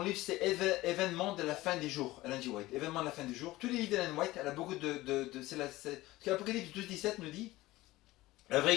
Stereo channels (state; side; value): quieter; right; 18.2 dB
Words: c'est Événements de la fin des jours, Ellen G. White. Événements de la fin des jours. Tous les livres d'Ellen White, elle a beaucoup ce que l'Apocalypse 12-17 nous dit. La vraie